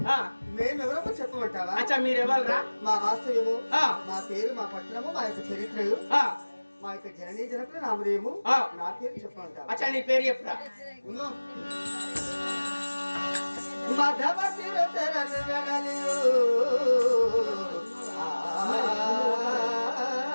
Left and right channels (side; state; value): both; inverted; correlation -1.00